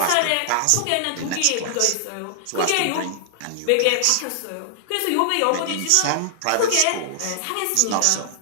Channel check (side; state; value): both; different; correlation -0.01